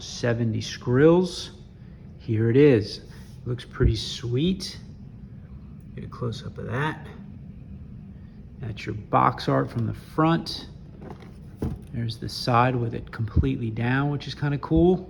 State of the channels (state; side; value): identical; both; correlation 1.00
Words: 70 scrills. Here it is. Looks pretty sweet. Get a close up of that. That's your box art from the front. There's the side with it completely down, which is kind of cool.